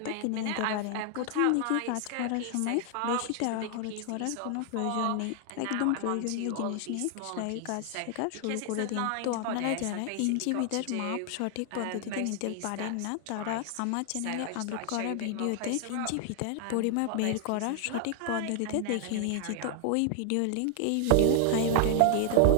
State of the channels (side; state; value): both; different; correlation 0.00